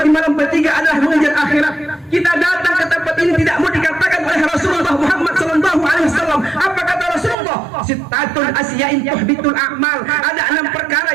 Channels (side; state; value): left; drops out; at 7.4 s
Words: di malam bertiga adalah mengejar akhirat. Kita datang ke tempat ini tidak mau dikatakan oleh Rasulullah Muhammad SAW. Apa kata Rasulullah? Sitatun asyain tuhbitul a'mal. Ada 6 perkara